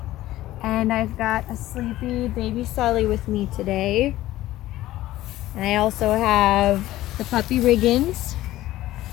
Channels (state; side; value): quieter; right; 15.5 dB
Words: and I've got a sleepy baby Sully with me today. And I also have the puppy Riggins.